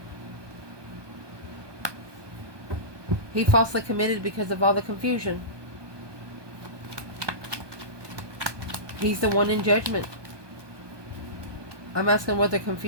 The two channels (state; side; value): late; left; 1.2 ms